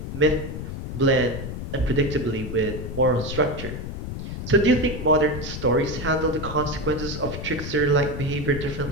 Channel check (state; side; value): noise; left; rumble, 7 dB below the sound